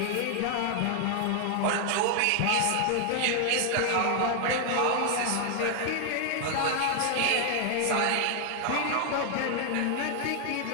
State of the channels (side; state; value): both; different; correlation 0.00